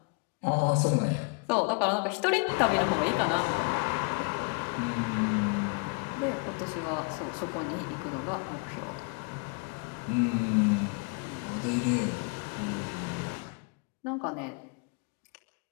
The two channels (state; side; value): quieter; right; 33.6 dB